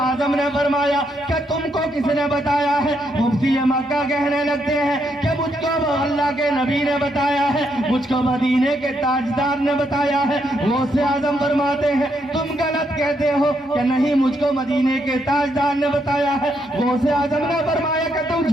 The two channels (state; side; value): normal; both; correlation 0.77